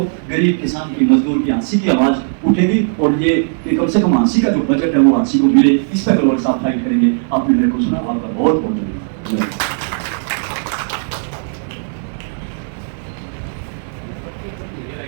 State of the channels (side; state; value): left; silent; digital silence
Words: गरीब किसान की, मजदूर की हंसी की आवाज उठेगी और ये कि कम से कम हंसी का जो बजट है वो हंसी को मिले, इस पर गौर साफ फाइट करेंगे। आपने मेरे को सुना, आपका बहुत बहुत धन्यवाद।